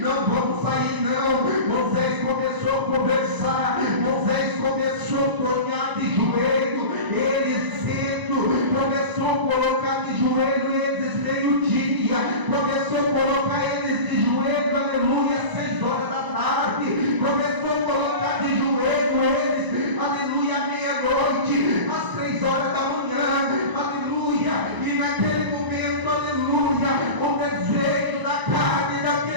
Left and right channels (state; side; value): late; left; 1.0 ms